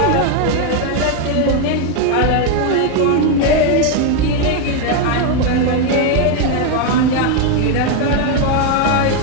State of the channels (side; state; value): both; different; correlation 0.01